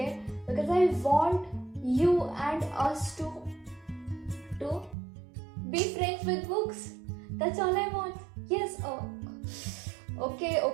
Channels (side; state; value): left; drops out; at 5.0 s